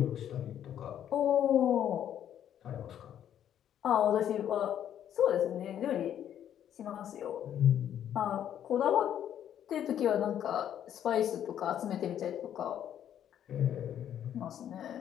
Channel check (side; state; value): right; quieter; 10.2 dB